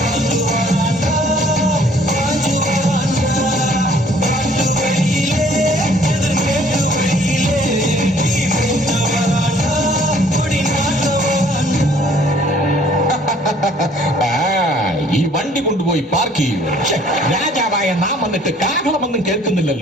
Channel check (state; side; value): normal; both; correlation 0.58